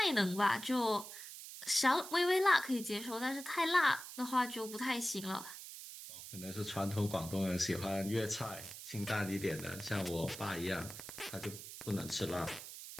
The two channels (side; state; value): right; noise; hiss, 11 dB below the sound